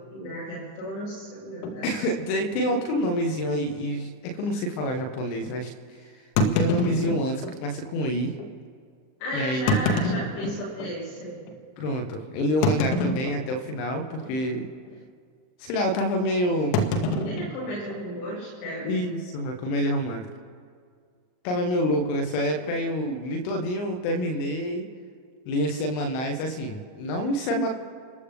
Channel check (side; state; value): right; late; 39 ms